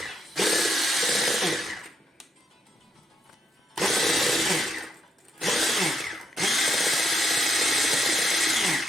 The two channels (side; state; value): both; normal; correlation 0.78